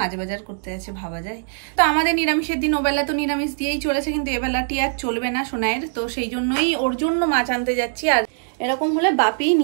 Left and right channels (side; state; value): left; silent; 64 dB below the other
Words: বাজার করতে আছে, ভাবা যায়। তো আমাদের নিরামিষের দিন ওবেলা তো নিরামিষ দিয়েই চলেছে, কিন্তু এবেলাটি আর চলবে না সোনাইয়ের। তো সেই জন্যই ওর জন্য মাছ আনতে যাচ্ছি। আর এরকম হলে বাপি